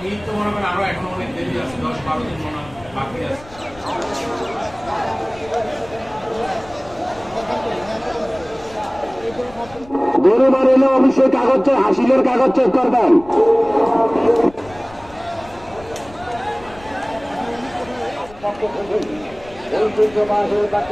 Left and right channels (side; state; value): left; noise; rumble, 21 dB below the sound